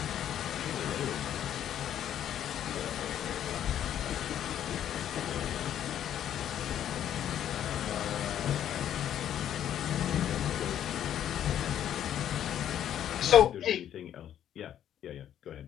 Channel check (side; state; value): right; quieter; 10.5 dB